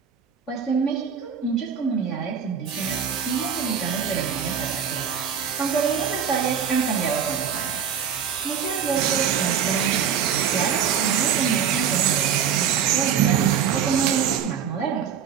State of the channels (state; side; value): quieter; left; 7.7 dB